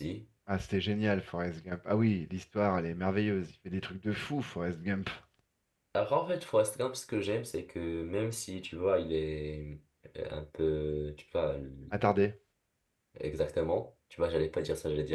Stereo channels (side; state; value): both; identical; correlation 1.00